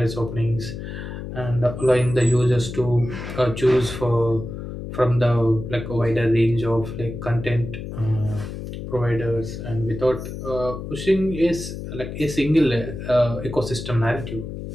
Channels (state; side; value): noise; left; hum, 8 dB below the sound